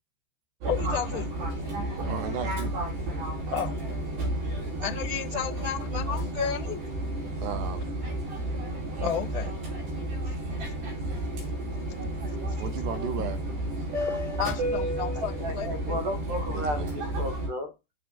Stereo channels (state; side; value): late; left; 13 ms